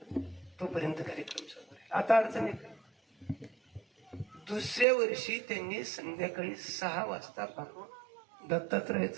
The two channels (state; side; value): drops out; left; at 4.9 s